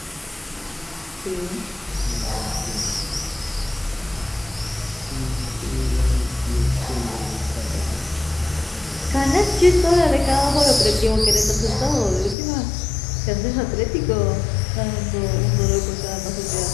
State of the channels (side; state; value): right; drops out; at 12.4 s